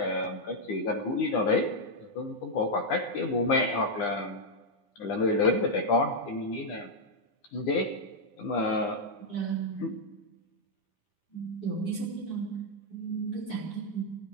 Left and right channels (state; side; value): late; right; 9.9 ms